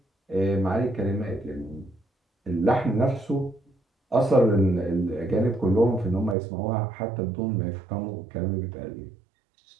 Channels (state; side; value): drops out; left; at 6.4 s